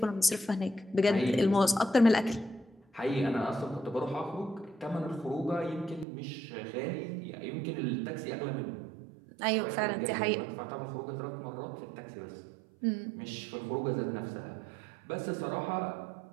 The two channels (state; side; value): drops out; left; at 6.1 s